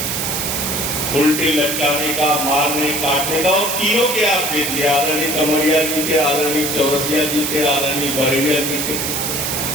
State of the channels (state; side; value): noise; right; hiss, 1 dB below the sound